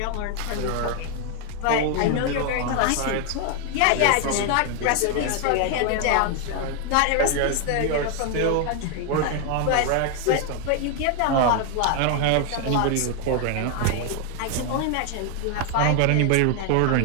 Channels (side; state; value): both; different; correlation 0.00